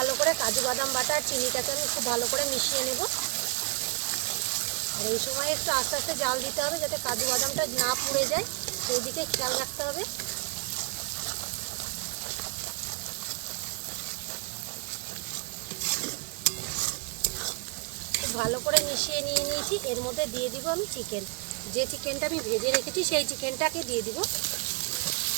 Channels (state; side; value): quieter; left; 37.7 dB